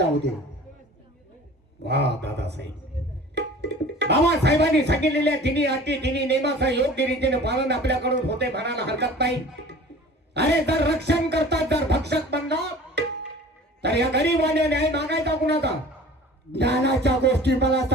दे. वा दादासाहेब, बाबासाहेबांनी सांगितलेल्या तिन्ही अटी तिन्ही नियमाचा योग्य रीतीने पालन आपल्याकडून होते म्हणायला हरकत नाही. अरे जर रक्षण करतात, जर भक्षक बनला तर या गरीबाने न्याय मागायचा कुणाचा? ज्ञानाच्या गोष्टी मला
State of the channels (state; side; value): normal; both; correlation 0.44